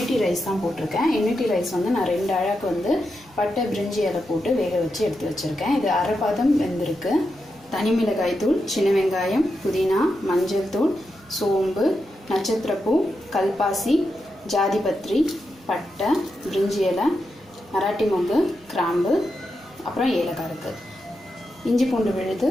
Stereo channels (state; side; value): normal; both; correlation 0.87